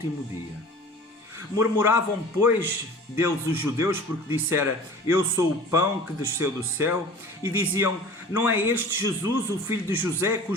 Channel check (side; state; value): both; normal; correlation 0.41